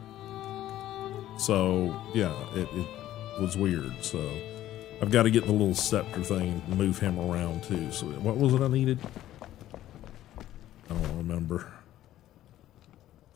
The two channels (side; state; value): right; quieter; 13.4 dB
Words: So yeah, it was weird. So I've got to get the little scepter thing and move him around too. So what was it I needed? I don't remember.